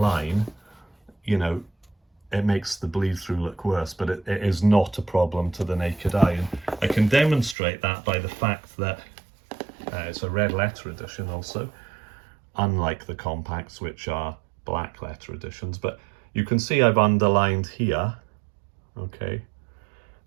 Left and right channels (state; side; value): drops out; left; at 7.6 s